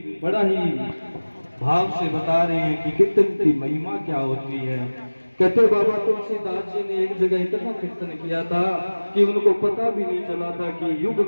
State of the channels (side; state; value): both; inverted; correlation -1.00